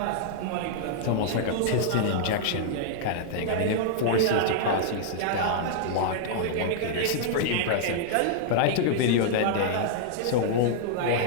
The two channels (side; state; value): both; different; correlation -0.01